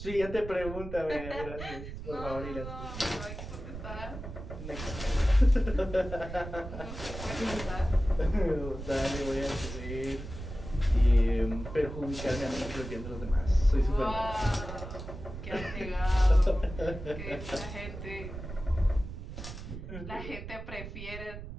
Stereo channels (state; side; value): noise; right; rumble, 9 dB below the sound